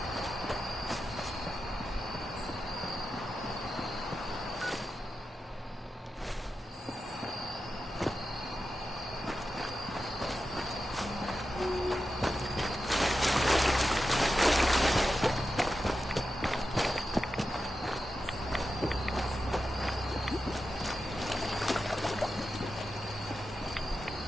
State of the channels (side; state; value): both; normal; correlation 0.90